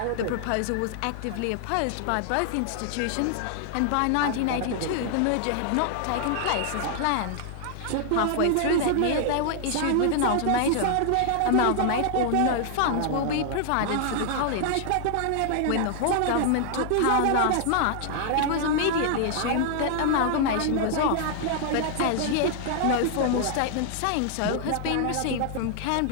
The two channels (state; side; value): different; both; correlation 0.00